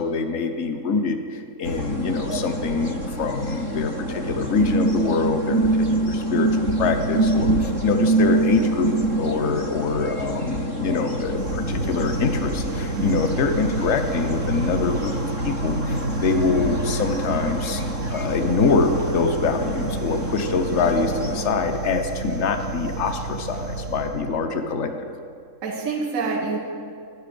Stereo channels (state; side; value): late; left; 3.7 ms